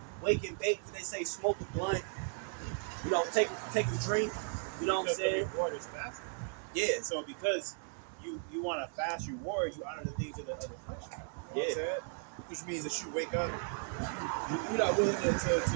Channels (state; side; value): silent; left; 54 dB below the other